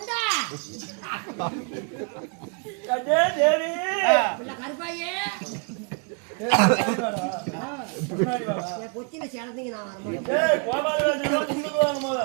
கருப்பாயே பொச்சில சேர்ந்தீங்க.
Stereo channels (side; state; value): left; quieter; 36.5 dB